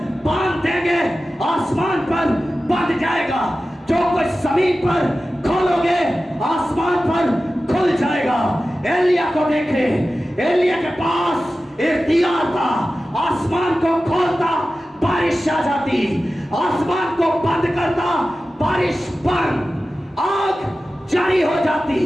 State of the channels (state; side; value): normal; both; correlation 0.95